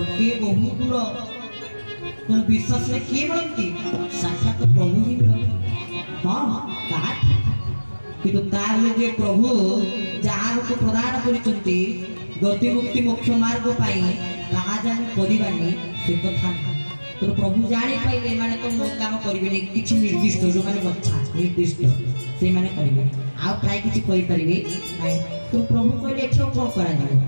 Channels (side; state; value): both; inverted; correlation -1.00